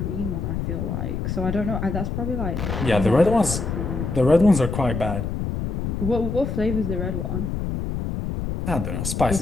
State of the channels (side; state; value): left; noise; rumble, 3 dB below the sound